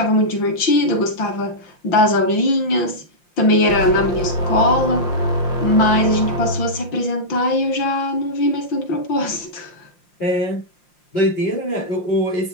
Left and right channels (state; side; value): late; right; 5.7 ms